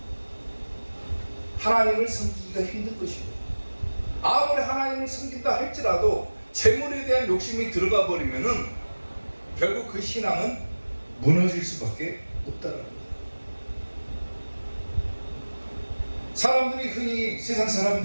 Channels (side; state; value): both; inverted; correlation -1.00